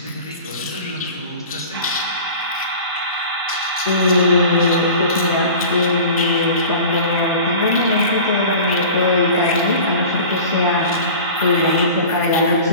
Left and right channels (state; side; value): inverted; both; correlation -0.38